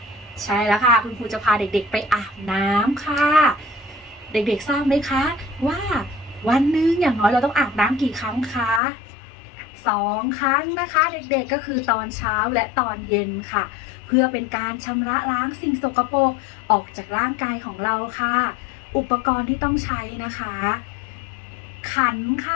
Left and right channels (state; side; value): drops out; right; at 8.8 s